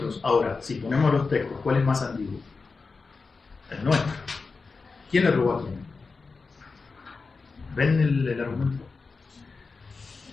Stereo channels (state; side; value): quieter; right; 4.4 dB